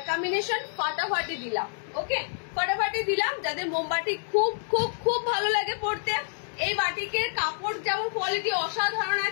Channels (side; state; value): right; silent; digital silence